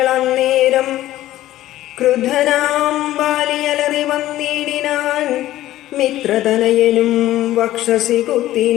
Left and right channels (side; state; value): right; quieter; 14.6 dB